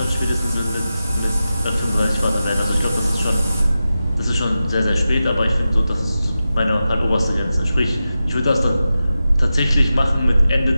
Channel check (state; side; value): inverted; both; correlation -0.92